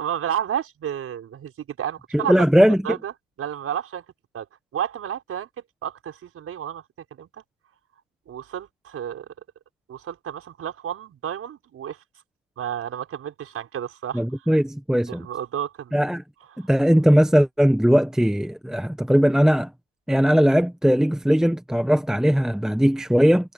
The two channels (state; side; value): normal; both; correlation 0.90